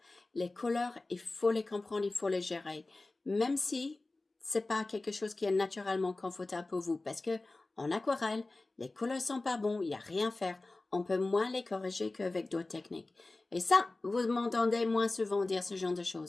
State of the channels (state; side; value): quieter; right; 3.1 dB